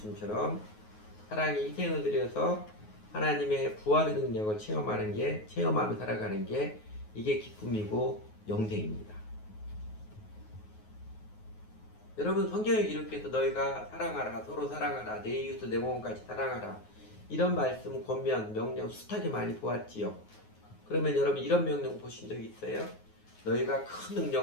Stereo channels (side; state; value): right; late; 9.4 ms